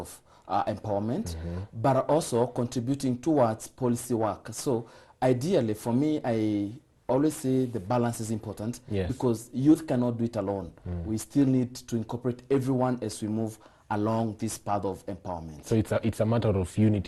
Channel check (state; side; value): identical; both; correlation 1.00